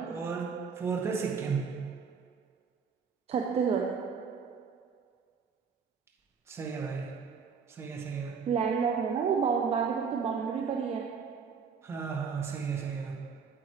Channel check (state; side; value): quieter; left; 5.9 dB